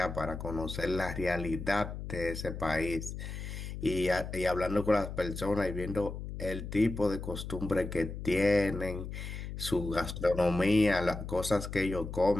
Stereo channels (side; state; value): left; noise; hum, 7 dB below the sound